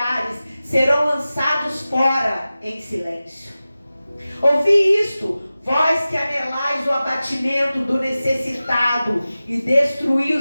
serão lançados fora em silêncio. Ouvi isto, vós que anelais o abatimento do necessitado e destruí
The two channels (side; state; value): both; inverted; correlation -0.96